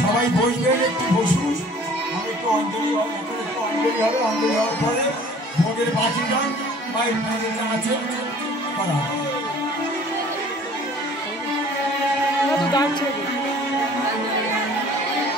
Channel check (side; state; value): both; normal; correlation 0.51